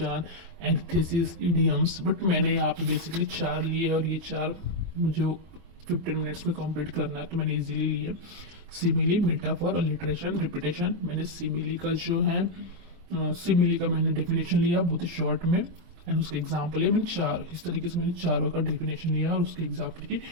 antithesis, idioms, but मैंने यहाँ पे बेसिकली 4 लिए और ये 4 मुझे 15 मिनट्स में कंप्लीट करना है तो मैंने इजीली लिए। Simile, metaphor, alliteration, repetition. मैंने सिमिली का जो है सिमिली का मैंने डेफिनेशन लिया बहुत ही शॉर्ट में, एंड उसके एग्जाम्पल है मैंने 4। इस तरीके से मैंने चारों का डेफिनेशन लिया और उसके एग्जाम्पल के,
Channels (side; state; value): left; late; 23 ms